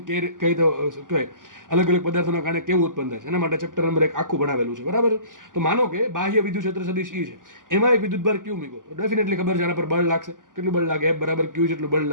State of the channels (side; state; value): left; late; 0.88 ms